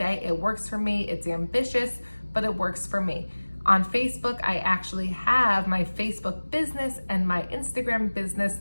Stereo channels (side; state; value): both; inverted; correlation -1.00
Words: It works for me. It's ambitious, but it works for me. On Facebook, I actually have my Facebook business and my Instagram business